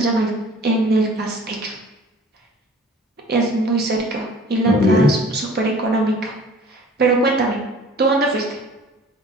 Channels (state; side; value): normal; both; correlation 0.48